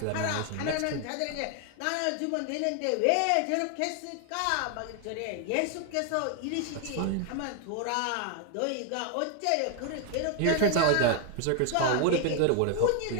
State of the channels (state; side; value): different; both; correlation 0.00